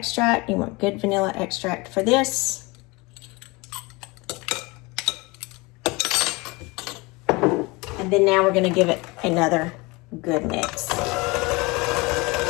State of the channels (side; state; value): right; quieter; 25.0 dB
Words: You want good vanilla extract for this. And then now we're going to give it another good mix.